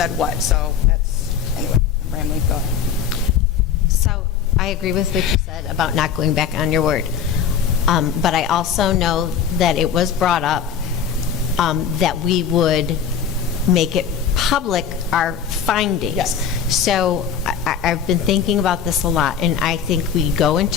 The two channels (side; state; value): right; quieter; 7.5 dB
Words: what. So anyway, I'm rambling, go ahead. So I agree with what you said about not going back on your word. But I also know that it was brought up that we would make it public, our findings. Yes. So I've been thinking about this a lot, and I think we go